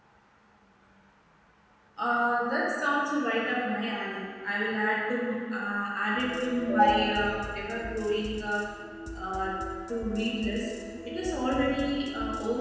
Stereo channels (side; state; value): both; identical; correlation 1.00